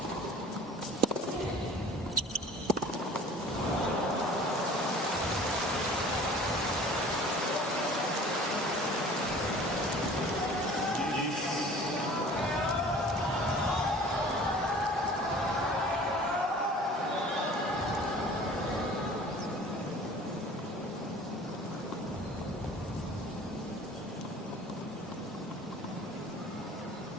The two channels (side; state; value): both; normal; correlation 0.46